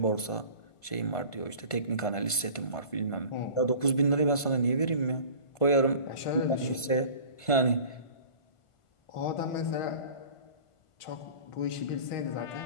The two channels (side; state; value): right; late; 1.5 ms